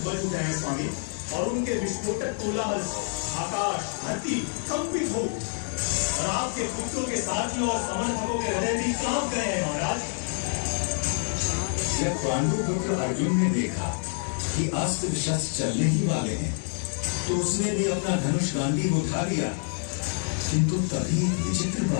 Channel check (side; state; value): right; silent; 60 dB below the other